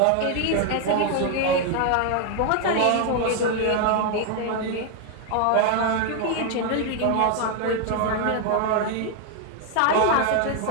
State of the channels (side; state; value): both; different; correlation 0.00